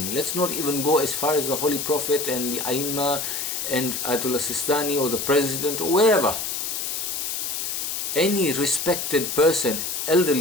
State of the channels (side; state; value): left; noise; hiss, 3 dB below the sound